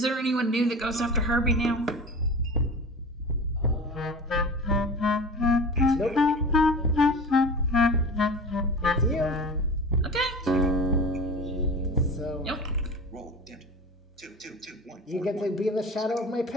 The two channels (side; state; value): both; normal; correlation 0.34